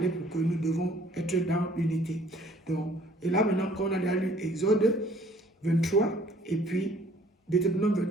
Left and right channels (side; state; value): both; normal; correlation 0.56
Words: pour que nous devons être dans l'unité. Donc, et là maintenant, quand on a déjà lu Exode 23 et puis Deutéronome